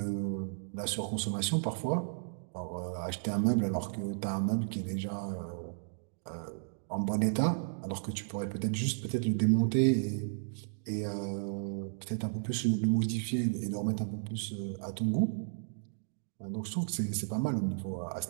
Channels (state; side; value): silent; left; digital silence